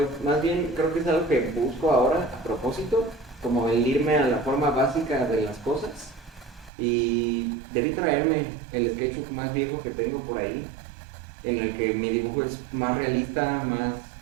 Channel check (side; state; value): left; drops out; at 6.7 s